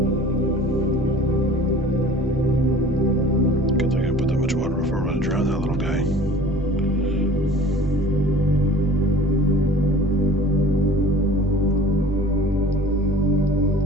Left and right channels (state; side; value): normal; both; correlation 0.45